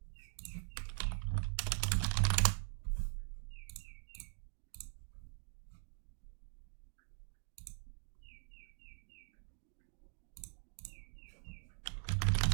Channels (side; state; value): left; silent; digital silence